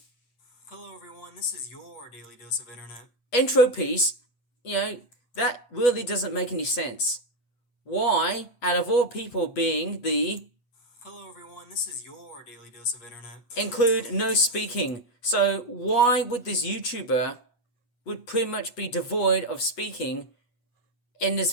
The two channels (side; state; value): right; late; 8.2 ms